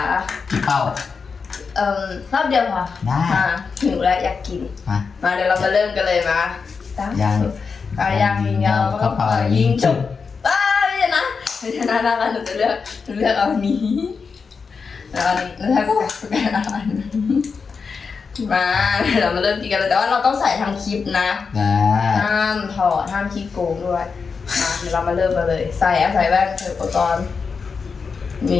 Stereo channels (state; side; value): quieter; right; 5.3 dB